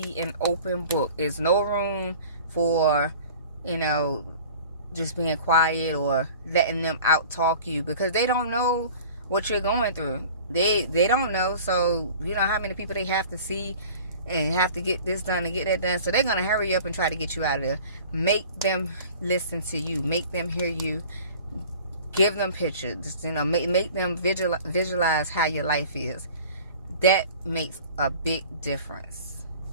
an open book. There's no room for, just being quiet or letting them out talk you, because they don't know what you're going through. They don't know. So how many people they have to see and have to get this done and get that done. So they're going to hurry up and try to get you out of there. Make them listen to you. Make them hear you. Give them pictures, make them visualize how your life is. That makes a big difference.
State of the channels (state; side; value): inverted; both; correlation -0.44